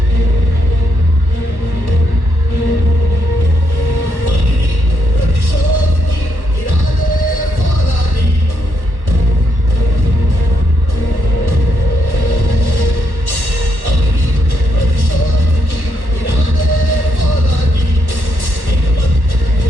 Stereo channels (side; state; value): right; late; 1.1 ms